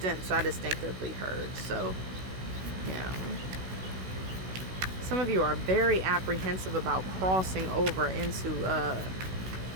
I distinctively heard. So yeah, some of you are very apprehensive about crossing over into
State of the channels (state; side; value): late; left; 16 ms